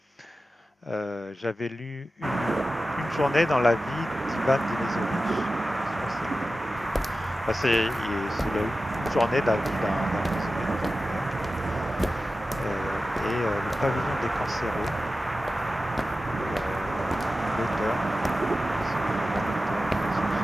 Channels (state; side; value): normal; both; correlation 0.94